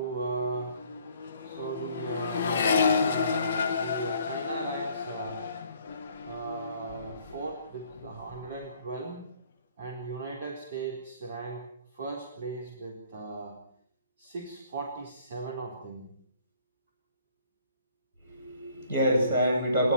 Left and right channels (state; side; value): inverted; both; correlation -0.60